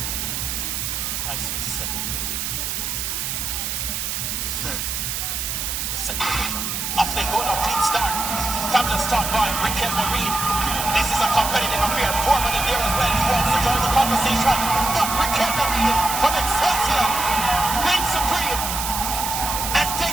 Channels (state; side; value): noise; right; hiss, 2 dB below the sound